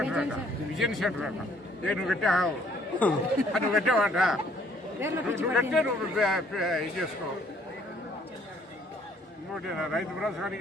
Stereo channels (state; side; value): normal; both; correlation 0.62